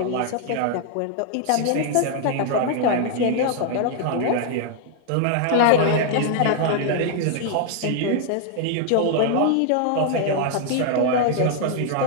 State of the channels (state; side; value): different; both; correlation 0.00